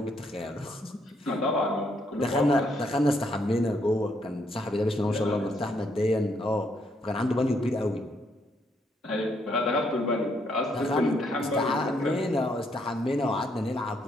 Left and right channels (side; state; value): both; normal; correlation 0.73